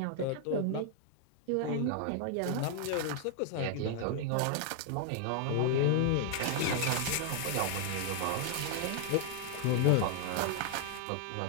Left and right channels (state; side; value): different; both; correlation 0.00